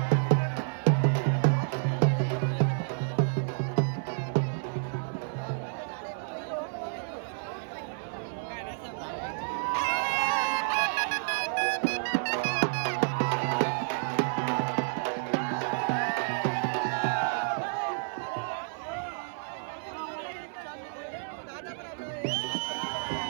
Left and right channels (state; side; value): silent; left; 58 dB below the other